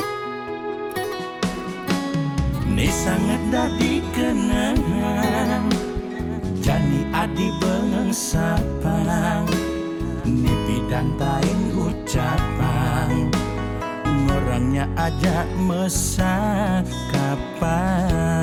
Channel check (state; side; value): identical; both; correlation 1.00